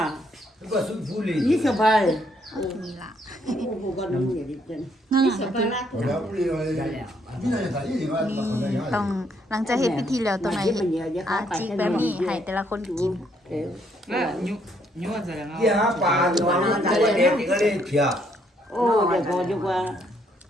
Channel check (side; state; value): both; normal; correlation 0.71